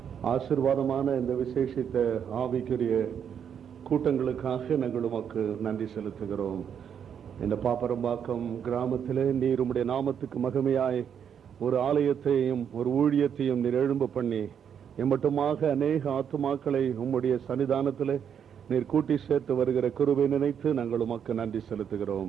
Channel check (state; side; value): quieter; left; 8.1 dB